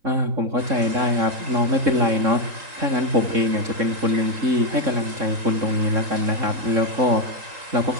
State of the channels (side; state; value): left; late; 3.8 ms